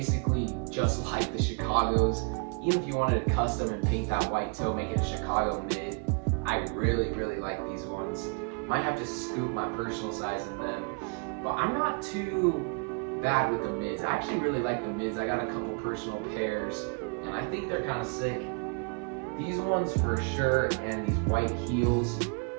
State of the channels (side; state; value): left; quieter; 37.4 dB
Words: just like the Chicagos. Even if you wanted to custom and paint that white toe, make it a Chicago mid, I really, really like these ones. Might have to scoop my personal size in them, but I'm not too bad with the mids. I actually really like the mids. I got a couple personal pairs, and I think they're kind of sick. These ones for sure, and these white heels,